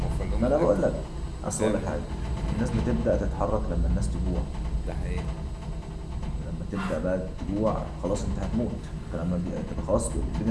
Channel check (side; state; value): both; identical; correlation 1.00